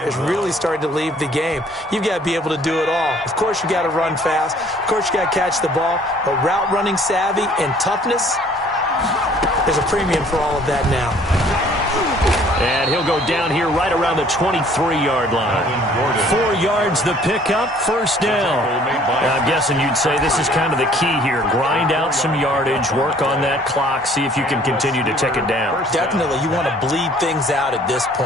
really starting to leave the game. You've got to be able to do it all. Of course, you got to run fast. Of course, you got to catch the ball. But route running savvy and toughness, there's a premium for all of that now. And he'll go down here right around the 23-yard line. 4 yards the pickup, first down. I'm guessing you'd say this is kind of the key here. Grind out some yardage, work on that clock, see if you can continue to tick it down. Definitely, you want to bleed things out at this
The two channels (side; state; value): both; normal; correlation 0.57